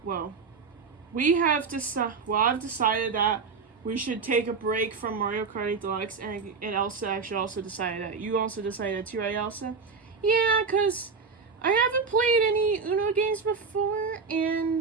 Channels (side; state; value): left; quieter; 5.1 dB